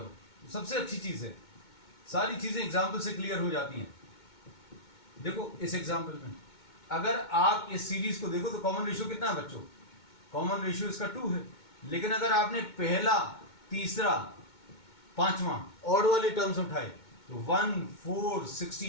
सबसे अच्छी चीज है, सारी चीजें एग्जाम्पल से क्लियर हो जाती हैं। देखो इस एग्जाम्पल में अगर आप इस सीरीज को देखो तो कॉमन रेशियो कितना है बच्चों? कॉमन रेशियो इसका 2 है, लेकिन अगर आपने पहला, तीसरा, पांचवा ऑड वाले टर्म्स उठाए तो 1 4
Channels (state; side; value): late; right; 2.2 ms